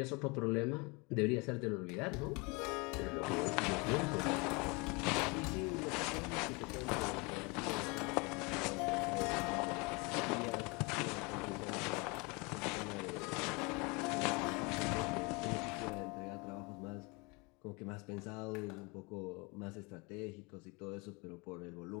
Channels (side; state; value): right; quieter; 28.4 dB